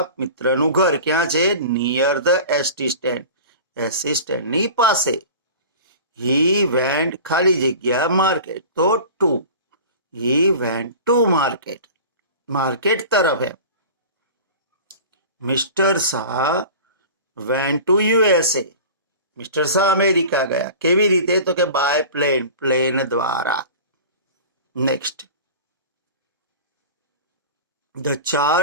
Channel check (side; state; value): both; inverted; correlation -0.37